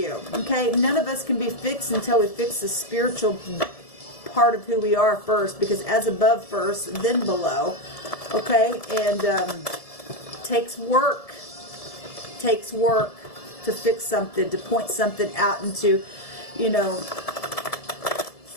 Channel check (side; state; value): right; late; 1.7 ms